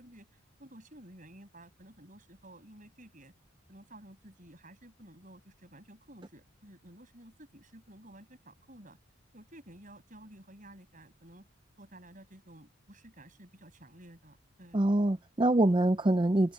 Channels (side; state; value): both; normal; correlation 0.83